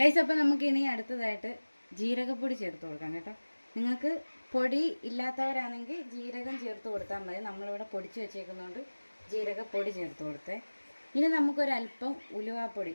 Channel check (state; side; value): inverted; both; correlation -1.00